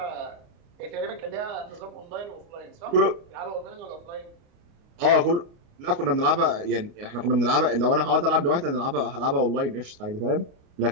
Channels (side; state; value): left; late; 29 ms